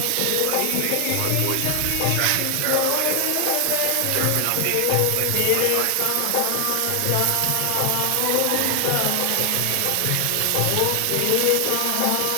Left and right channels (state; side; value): different; both; correlation 0.00